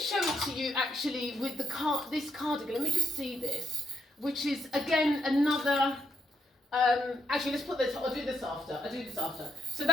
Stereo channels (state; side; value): normal; both; correlation 0.75